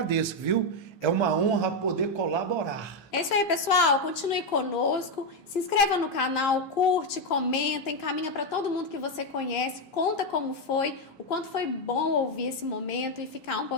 viu? É uma honra poder colaborar. É isso aí, pessoal. Continue conosco. Se inscreva no canal, curte, comenta, encaminha para todo mundo que você conhece. Conta como foi, o quanto foi bom ouvir esse momento e ficar um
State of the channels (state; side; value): late; right; 15 ms